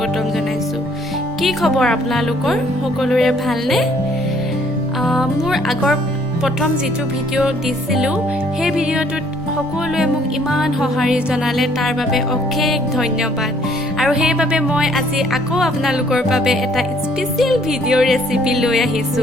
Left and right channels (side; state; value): both; normal; correlation 0.62